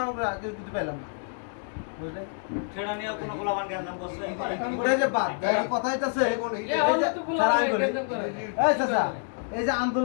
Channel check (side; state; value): right; silent; 60 dB below the other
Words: আমরা কিছু পাইলাম না, বুঝলে? সেটা নিয়ে কোনো গোলাবান গ্যাঞ্জাম করছে ওটা যে বাদ কথা হইতাছে স্যার আমি বলি এই চাচা, এই যে